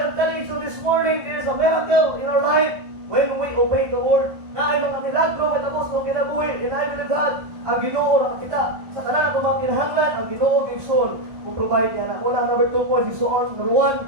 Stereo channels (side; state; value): left; late; 1.5 ms